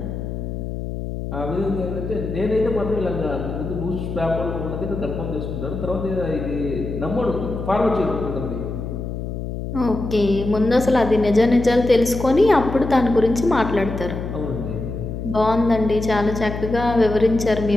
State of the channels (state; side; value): noise; left; hum, 6 dB below the sound